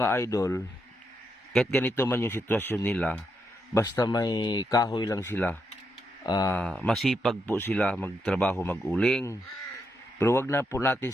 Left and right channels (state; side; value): normal; both; correlation 0.81